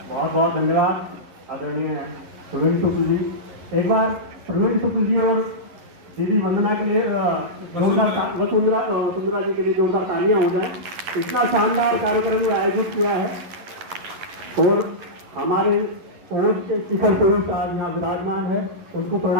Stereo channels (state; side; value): late; left; 11 ms